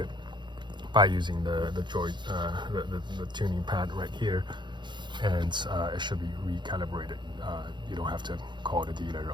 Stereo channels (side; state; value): left; late; 0.22 ms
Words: by using the tuning pad right here, and it should be recalibrated. You don't have to call the dealer